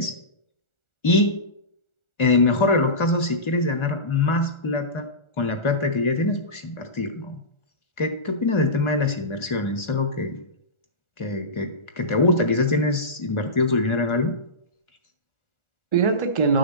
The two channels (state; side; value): late; right; 1.4 ms